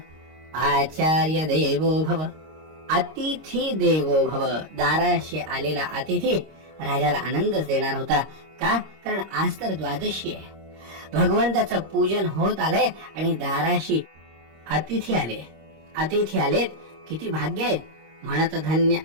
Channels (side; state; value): left; late; 26 ms